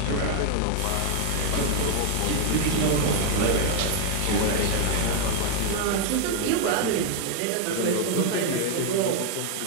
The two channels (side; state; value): both; different; correlation 0.00